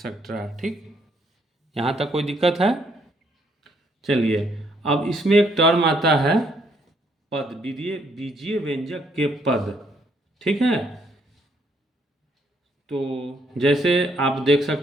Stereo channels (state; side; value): normal; both; correlation 0.70